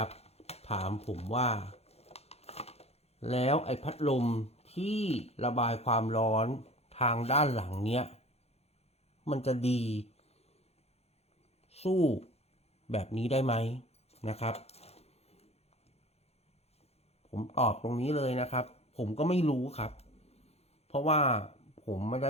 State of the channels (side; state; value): right; late; 0.30 ms